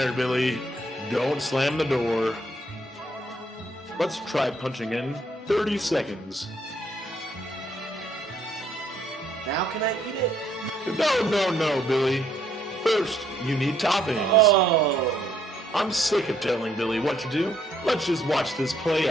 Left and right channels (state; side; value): normal; both; correlation 0.69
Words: Billy. Don't slam the door. Let's try punching in 30 seconds. Now can I eat it? No, Billy. First, you need toppings. Oh, I'm sick of telling Billy what to do. Let's just watch this play